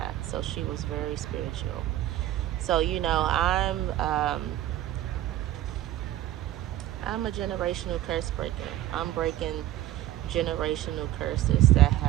So she was very spiritual. So you know, I'm a generational curse breaker. I'm breaking generational curses that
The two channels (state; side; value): quieter; left; 13.6 dB